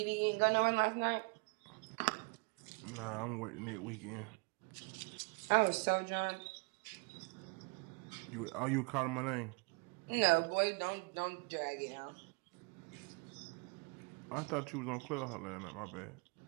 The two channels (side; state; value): left; quieter; 30.9 dB